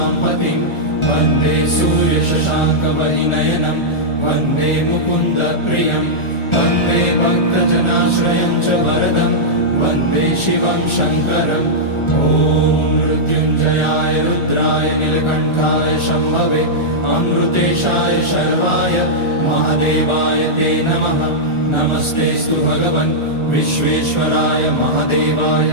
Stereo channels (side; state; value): right; late; 1.4 ms